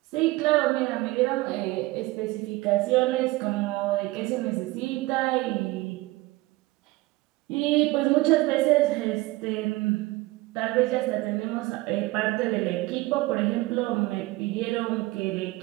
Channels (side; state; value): left; quieter; 20.3 dB